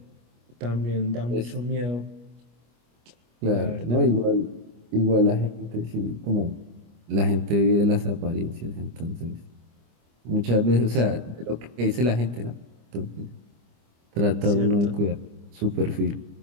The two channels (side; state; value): left; late; 25 ms